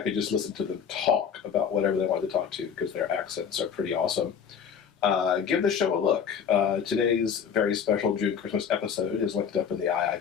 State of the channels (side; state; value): right; quieter; 7.3 dB